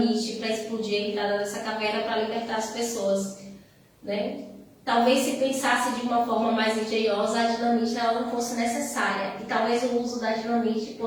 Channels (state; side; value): identical; both; correlation 1.00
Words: para explodir a entrada dessa caverna para libertar as pessoas, né? Talvez se pensasse de uma forma mais engenhosa, a dinamite ela não fosse necessária. E talvez o uso da dinamite